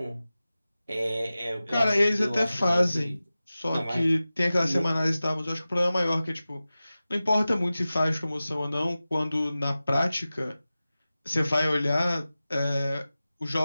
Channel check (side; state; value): both; inverted; correlation -0.96